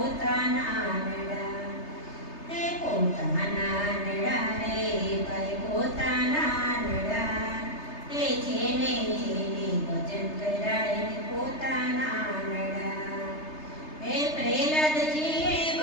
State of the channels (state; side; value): late; right; 3.3 ms